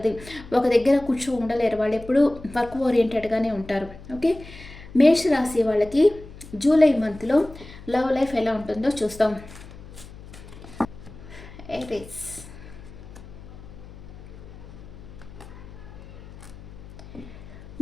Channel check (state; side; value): noise; left; hum, 17 dB below the sound